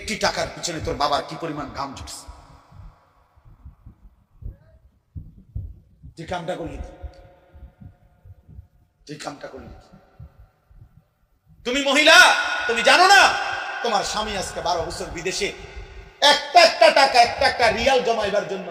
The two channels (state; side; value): identical; both; correlation 1.00